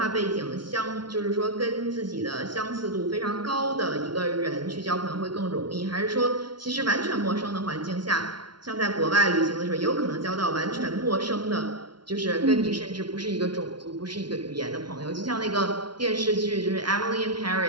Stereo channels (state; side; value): late; left; 0.71 ms